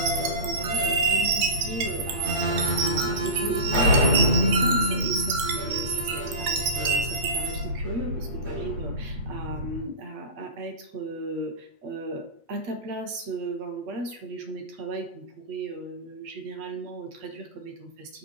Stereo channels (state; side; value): late; left; 8.3 ms